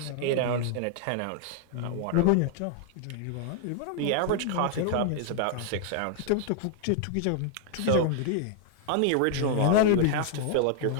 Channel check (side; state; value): both; different; correlation 0.00